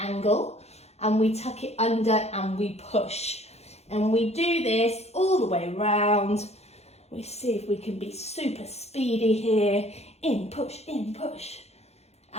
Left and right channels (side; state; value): right; late; 0.31 ms